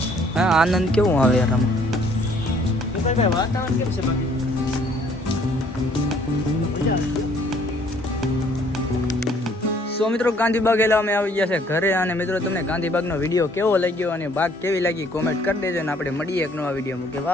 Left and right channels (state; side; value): normal; both; correlation 0.61